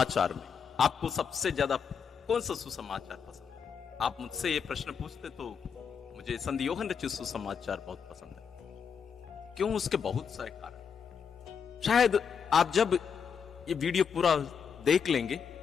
में आपको सबसे ज्यादा कौन सा सुसमाचार पसंद है? आप मुझसे ये प्रश्न पूछते तो मुझे संत यूहन्ना रचित सुसमाचार बहुत पसंद है। क्यों? उसके बहुत सारे कारण। शायद आप जब ये वीडियो पूरा देख लेंगे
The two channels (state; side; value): quieter; right; 6.7 dB